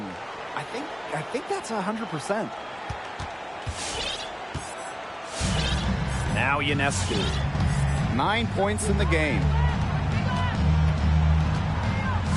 I think that's 100%. Now Ionescu. 9 points in the game.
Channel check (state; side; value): identical; both; correlation 1.00